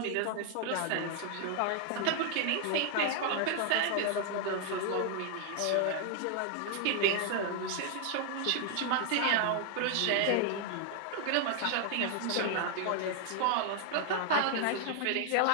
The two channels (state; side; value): different; both; correlation 0.00